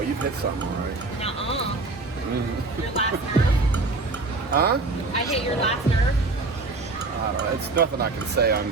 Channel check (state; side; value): quieter; left; 3.5 dB